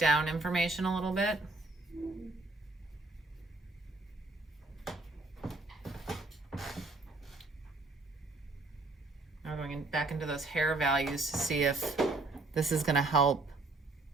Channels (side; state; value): left; quieter; 3.1 dB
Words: information a little bit. Now going back into those hair values to see if this is going to help.